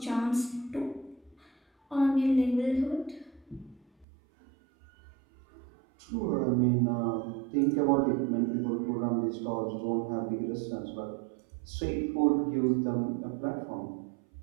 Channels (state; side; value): drops out; left; at 4.0 s